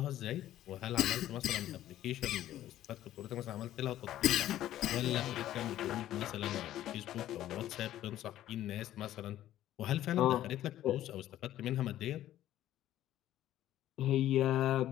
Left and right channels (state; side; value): quieter; right; 13.0 dB